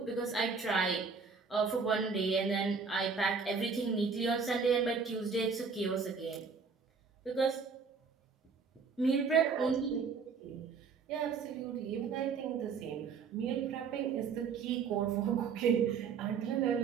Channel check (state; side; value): quieter; left; 5.4 dB